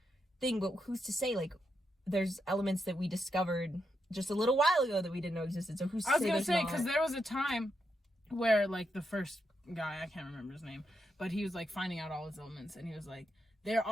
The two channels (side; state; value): both; normal; correlation 0.83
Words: thing, but who's to say? Like, there's elements that we discovered just a little while ago that we didn't know existed. So who's to say? I was gonna say, because there was a time where like the first guy, I can't remember his name, but he was like finding out all his elements, and he was like, there